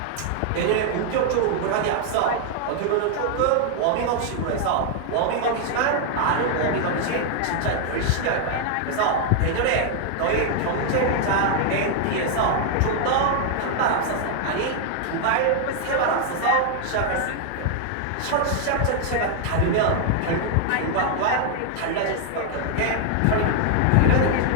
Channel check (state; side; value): different; both; correlation 0.00